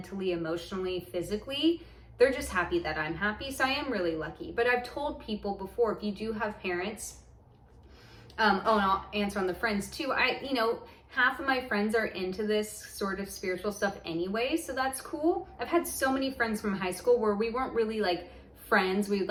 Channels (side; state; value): both; identical; correlation 1.00